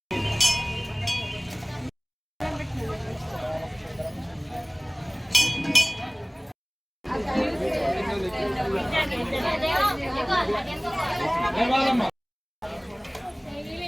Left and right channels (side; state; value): both; identical; correlation 1.00